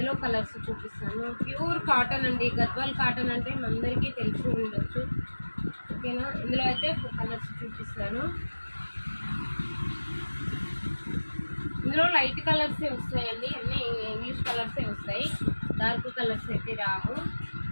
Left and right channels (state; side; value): inverted; both; correlation -1.00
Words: కలర్స్ చూపిస్తాను. ప్యూర్ కాటన్ అండి, గద్వాల్ కాటన్ అంటే అందరికీ తెలిసి ఉండొచ్చు. ఓకేనా, ఇందులో అయితే కలర్స్ చూపిస్తాను. ఇందులో లైట్ కలర్సే వస్తాయండి, అన్నీ ఇంగ్లీష్ కలర్సే వస్తాయి. డార్క్ కలర్స్ అయితే రావు.